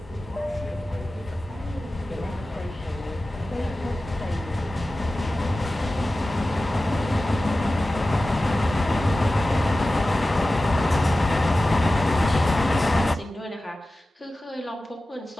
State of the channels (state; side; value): normal; both; correlation 0.95